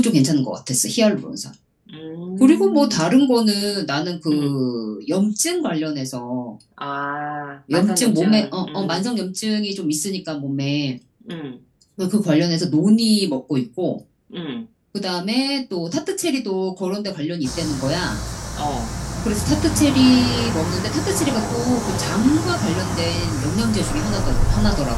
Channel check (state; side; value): identical; both; correlation 1.00